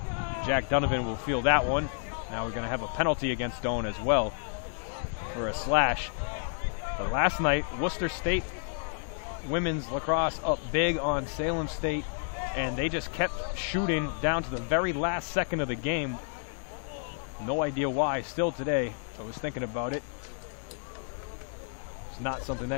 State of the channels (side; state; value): right; silent; 58 dB below the other